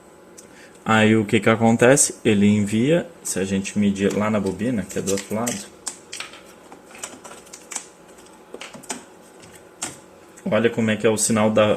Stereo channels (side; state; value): both; identical; correlation 1.00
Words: aí o que acontece? Ele envia, se a gente medir lá na bobina, que é do outro lado, olha como é que é o sinal